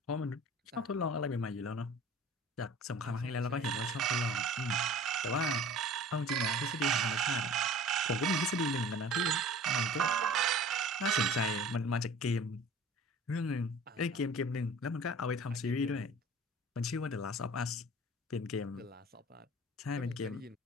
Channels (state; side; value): normal; both; correlation 0.44